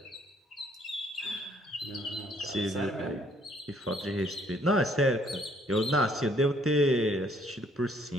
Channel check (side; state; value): both; normal; correlation 0.64